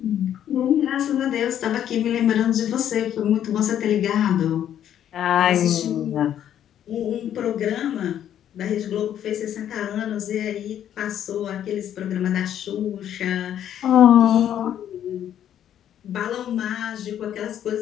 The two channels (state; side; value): quieter; right; 10.4 dB